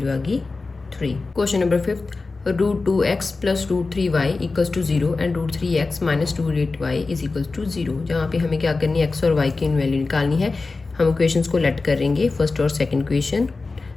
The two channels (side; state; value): right; quieter; 3.8 dB